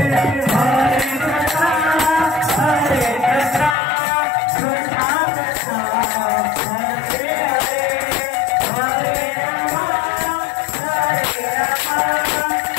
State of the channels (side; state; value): right; drops out; at 3.8 s